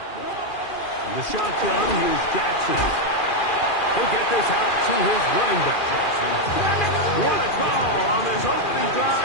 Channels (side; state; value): right; late; 2.4 ms